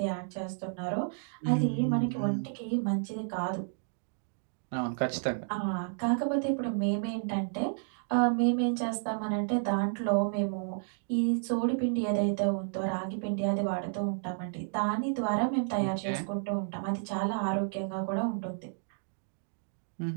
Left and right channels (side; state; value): left; silent; digital silence